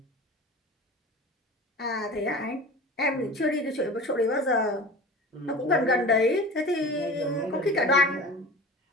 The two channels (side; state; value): both; normal; correlation 0.36